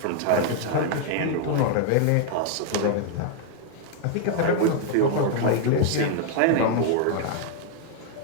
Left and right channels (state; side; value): different; both; correlation 0.00